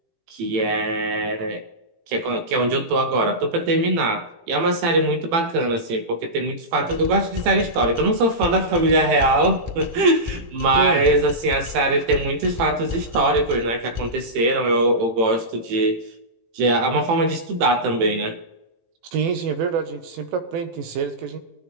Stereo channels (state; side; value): late; left; 18 ms